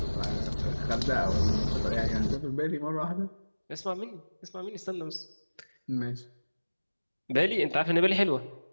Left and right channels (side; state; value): both; inverted; correlation -1.00